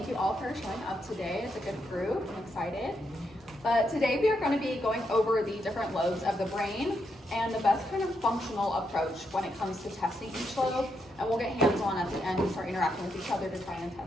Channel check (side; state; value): both; normal; correlation 0.81